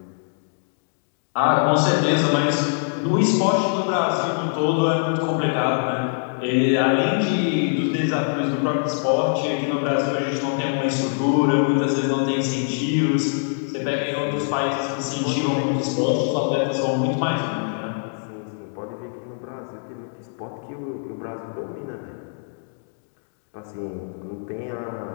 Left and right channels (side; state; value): right; silent; digital silence